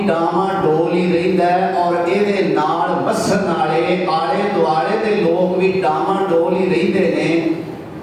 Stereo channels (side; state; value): both; identical; correlation 1.00